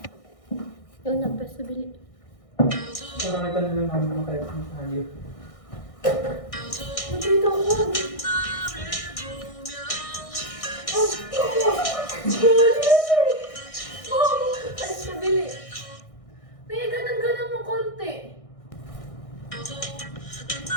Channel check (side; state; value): right; late; 1.6 ms